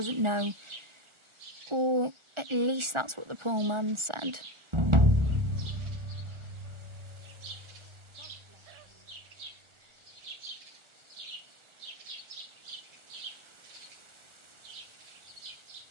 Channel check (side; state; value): left; late; 1.4 ms